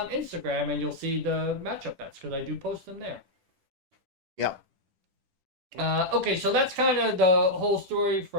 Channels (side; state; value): left; late; 10 ms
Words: Instagram, and you'll see the matchup bets, because I do post them there. Yep. Okay, so that's kind of the whole story